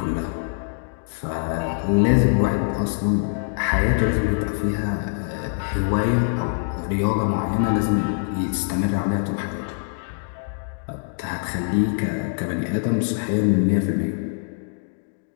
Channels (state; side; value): silent; right; digital silence